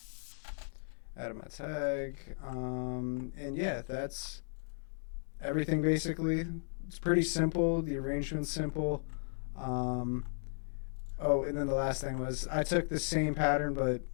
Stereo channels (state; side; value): silent; right; digital silence